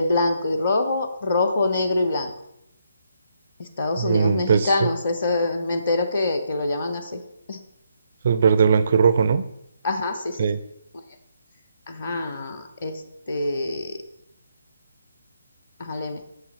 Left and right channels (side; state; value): both; inverted; correlation -0.76